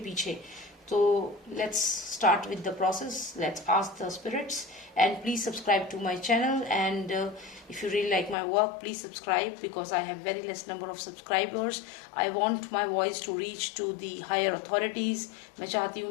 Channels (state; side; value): drops out; right; at 8.3 s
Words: पीछे। तो let's start with the process, let's ask the spirits and please subscribe to my channel and if you really like my work, please subscribe because I have very less number of subscribers. I want my voice to reach to the higher authorities। मैं चाहती हूँ